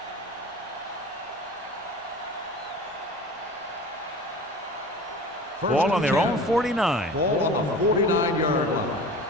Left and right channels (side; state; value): both; normal; correlation 0.38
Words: Ball on their own 49. Ball on the 49-yard line.